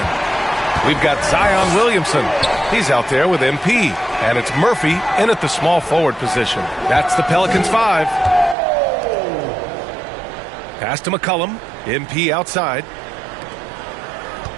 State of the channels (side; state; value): left; drops out; at 8.6 s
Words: We've got Zion Williamson. He's out there with MP. And it's Murphy in at the small forward position. That's the Pelicans 5. Pass to McCollum. MP outside.